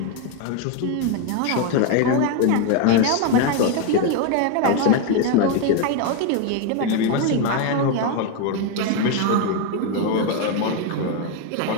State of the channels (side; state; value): both; different; correlation 0.02